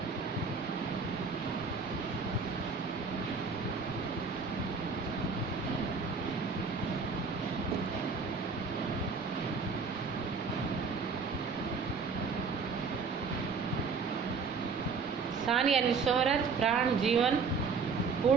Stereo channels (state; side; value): quieter; left; 4.9 dB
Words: शान यानी शोहरत। प्राण जीवन।